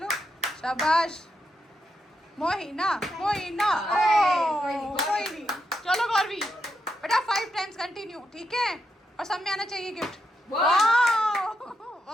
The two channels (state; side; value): normal; both; correlation 0.83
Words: शाबाश मोहिना मोहिना। ओह कोई नहीं, चलो गौरवी बेटा 5 टाइम्स कंटिन्यू, ठीक है, और सब में आना चाहिए गिफ्ट। वाह